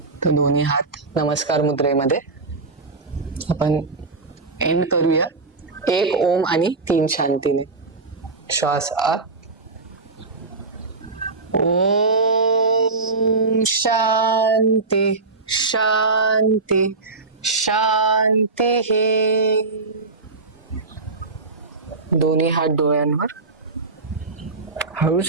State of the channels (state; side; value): quieter; left; 3.8 dB